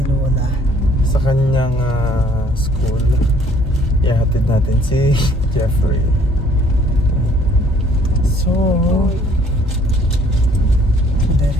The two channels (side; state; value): both; normal; correlation 0.60